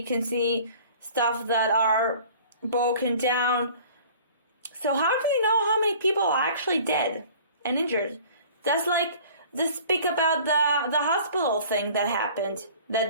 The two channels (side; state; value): both; inverted; correlation -0.48